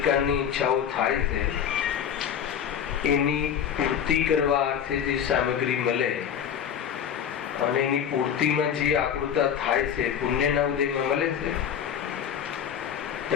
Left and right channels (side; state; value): right; quieter; 8.6 dB